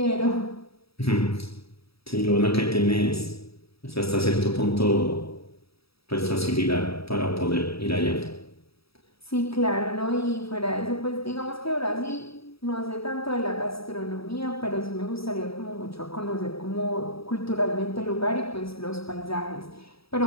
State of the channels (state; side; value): late; right; 0.77 ms